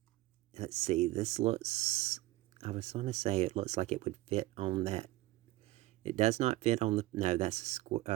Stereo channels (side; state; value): left; quieter; 18.1 dB